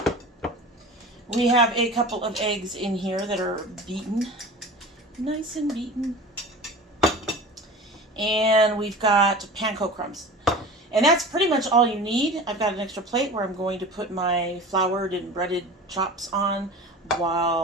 We have a couple of eggs in here that are beaten. Nice and beaten. And we've got panko crumbs. And that's pretty much all you need. I've got an extra plate where I'm going to put my floured and breaded chops on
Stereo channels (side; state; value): both; normal; correlation 0.36